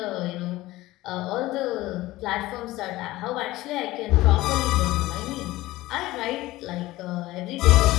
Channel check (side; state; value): right; quieter; 17.8 dB